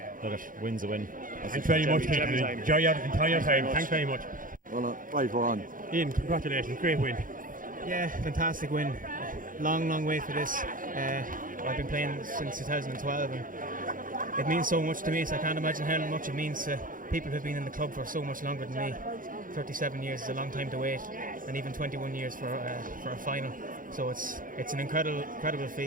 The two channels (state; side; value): late; left; 0.40 ms